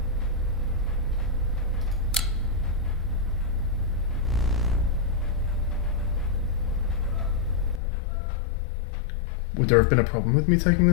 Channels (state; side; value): drops out; right; at 7.8 s